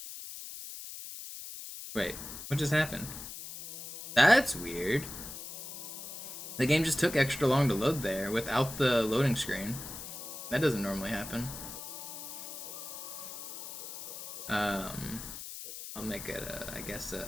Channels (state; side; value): noise; left; hiss, 9 dB below the sound